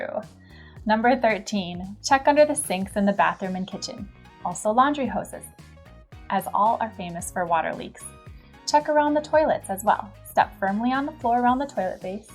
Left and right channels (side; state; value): both; identical; correlation 1.00